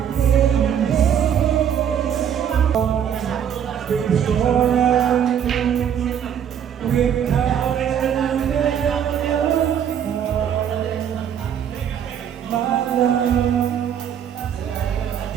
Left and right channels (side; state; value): left; quieter; 8.8 dB